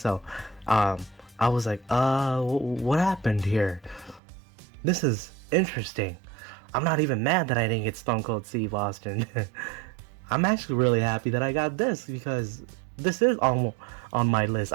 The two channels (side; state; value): left; drops out; at 4.2 s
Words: I was like, what happened here? This is interesting. I'm not even mad that I didn't get Stone Cold Steve Austin. I'm actually really happy that I got this, because this is on my list.